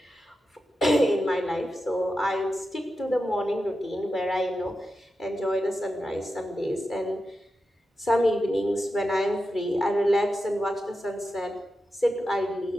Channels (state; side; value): normal; both; correlation 0.90